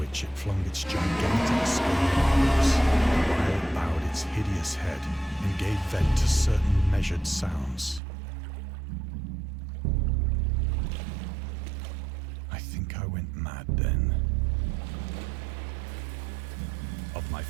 it flung its gigantic scaly arms, while it bowed its hideous head and gave vent to certain measured sounds. I think I went mad then. Of my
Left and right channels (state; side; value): drops out; left; at 8.0 s